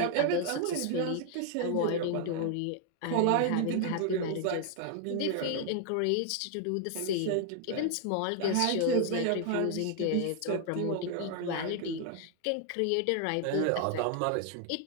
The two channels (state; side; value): different; both; correlation 0.00